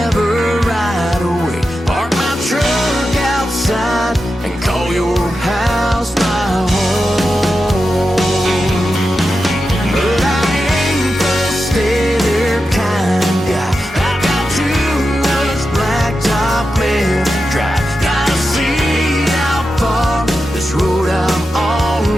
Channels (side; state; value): both; normal; correlation 0.90